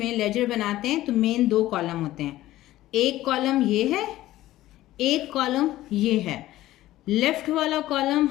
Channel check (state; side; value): quieter; right; 15.4 dB